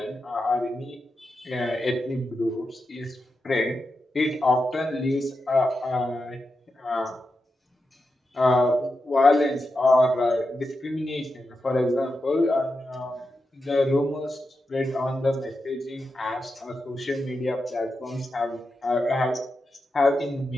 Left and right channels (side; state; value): both; normal; correlation 0.88